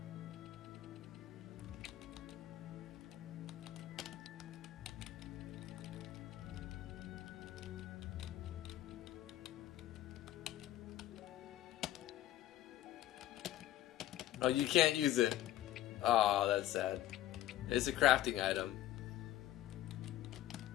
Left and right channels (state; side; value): quieter; right; 13.7 dB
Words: Oh, you can't use it. Oh, that's sad. It's a crafting item.